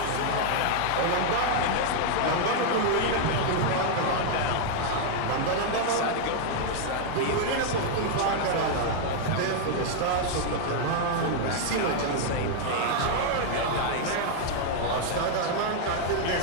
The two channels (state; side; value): different; both; correlation 0.00